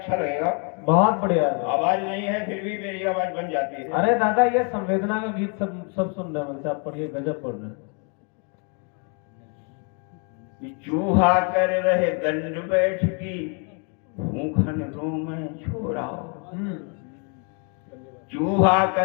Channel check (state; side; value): quieter; right; 38.1 dB